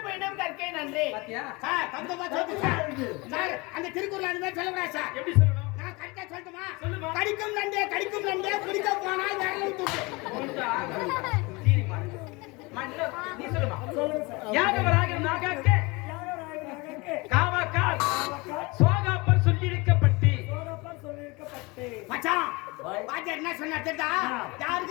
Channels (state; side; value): quieter; right; 25.4 dB